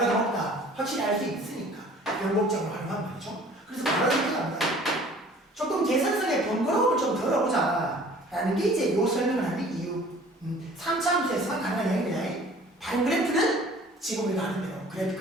높다 확실히 알 수 있으니까 연속적으로 활용한 말이죠. 그래서 바로 이렇게 갑니다. 조금 계산성의 번거로움을 좀 덜어보자 라는 게 이제 요 설명을 하는 이유. 3차 함수에서만 가능한 내용입니다. 다른 그래프는 지금 우리가 하는 대로 그래프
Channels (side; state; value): both; normal; correlation 0.50